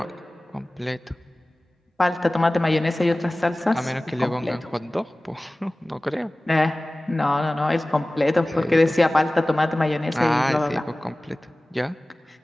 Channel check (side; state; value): both; normal; correlation 0.98